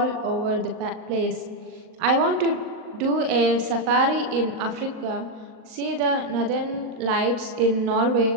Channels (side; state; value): left; late; 40 ms